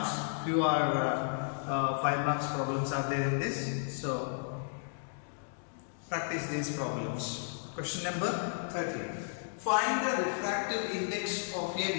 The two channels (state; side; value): silent; right; digital silence